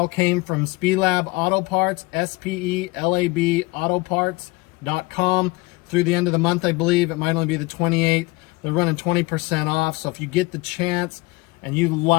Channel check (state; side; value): quieter; right; 23.4 dB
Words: came from Spelab Auto Parts, SPELAB Autoparts.com. Through the end of the month, I believe. It might only be the 28th. They're running 20% off. So if you get the chance and you